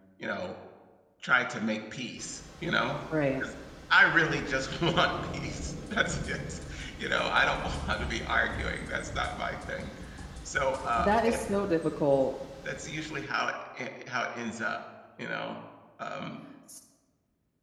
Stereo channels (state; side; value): identical; both; correlation 1.00